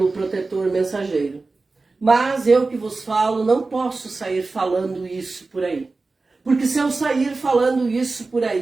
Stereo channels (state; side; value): quieter; left; 3.7 dB